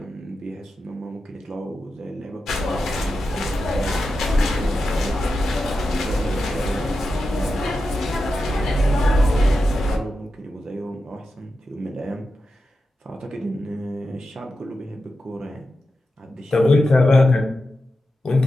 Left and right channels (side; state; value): both; normal; correlation 0.90